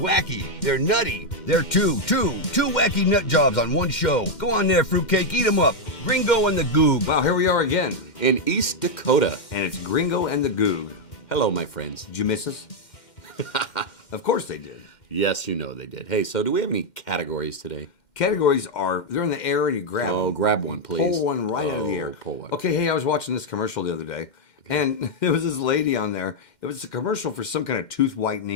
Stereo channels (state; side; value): late; right; 2.1 ms